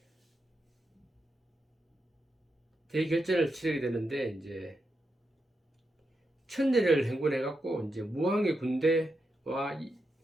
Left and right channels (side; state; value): both; normal; correlation 0.86